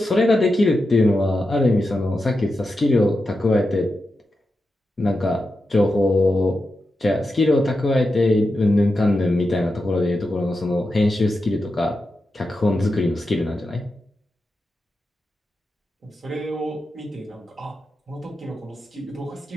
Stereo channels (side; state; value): both; normal; correlation 0.89